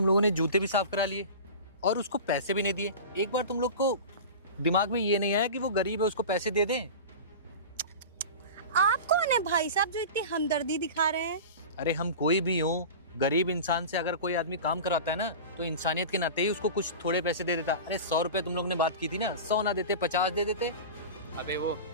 लोगों ने जूते भी साफ करा लिए और उसको पैसे भी नहीं दिए। एक बार तुम लोग को दिमाग में ये नहीं आया कि वो गरीब है, उसको पैसे दे दें? आप कौन है भाई साहब जो इतनी हमदर्दी दिखा रहे हैं? अरे हम कोई भी हो, गरीब इंसान से अगर कोई आदमी काम कराता है ना, तो इंसानियत के नाते ही उसको कुछ थोड़े पैसे दे देता। अरे 100 रुपए तुम लोग ने बात की थी ना, 100 ना देते 50 दे देते। अबे वो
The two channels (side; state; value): both; inverted; correlation -0.31